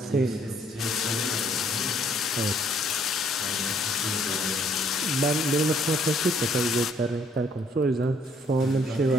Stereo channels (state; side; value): normal; both; correlation 0.64